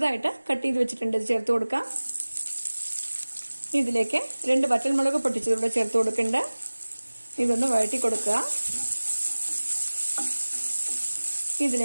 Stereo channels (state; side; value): inverted; both; correlation -1.00